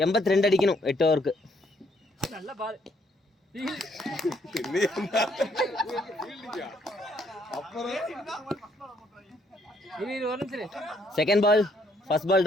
82 அடிக்கணும் 8 ஓவருக்கு. நல்ல பால். அப்புறம் இது ஒரு நிமிஷம். Second ball first ball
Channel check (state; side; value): normal; both; correlation 0.69